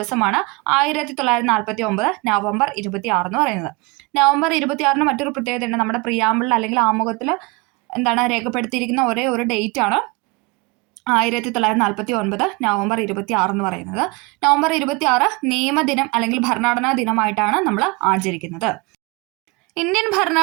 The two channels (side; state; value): left; quieter; 25.5 dB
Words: 1949 നവംബർ 26 എന്ന് പറയുന്നത്. നവംബർ 26 മറ്റൊരു പ്രത്യേകതയുണ്ട്. നമ്മുടെ പ്രിയാമ്പിളിൽ അല്ലെങ്കിൽ ആമുഖത്തിൽ രേഖപ്പെടുത്തിയിരിക്കുന്ന ഒരേ ഒരു ഡേറ്റ് ആണ് 1949 നവംബർ 26 എന്ന് പറയുന്നത്. നവംബർ 26 നിയമദിനം അല്ലെങ്കിൽ ഭരണഘടനാ ദിനമായിട്ടാണ് നമ്മൾ ആചരിക്കുന്നത്. ഇന്ത്യൻ